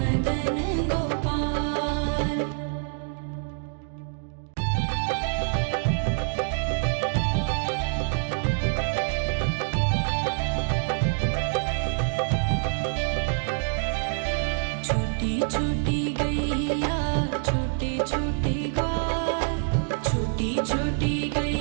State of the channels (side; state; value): left; silent; digital silence